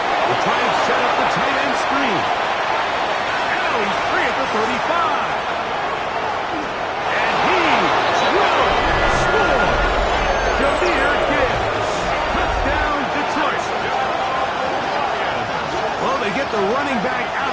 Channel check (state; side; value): identical; both; correlation 1.00